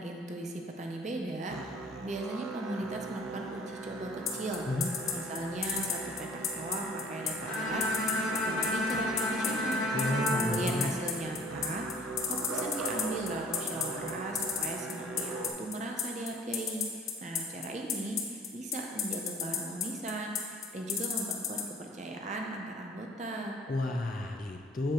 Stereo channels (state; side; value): normal; both; correlation 0.51